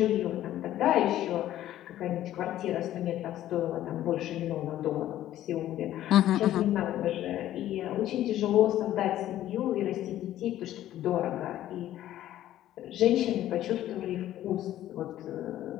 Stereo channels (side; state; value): right; quieter; 13.0 dB